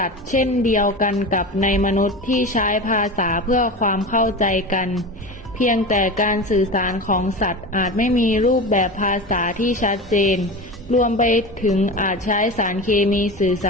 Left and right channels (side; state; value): both; normal; correlation 0.28